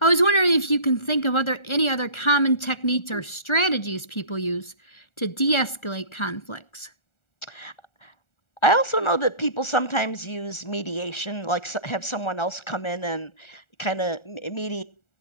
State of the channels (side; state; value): right; late; 1.4 ms